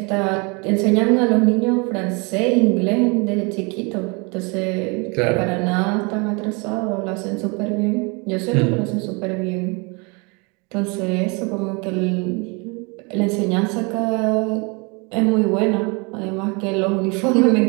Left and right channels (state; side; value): quieter; left; 30.2 dB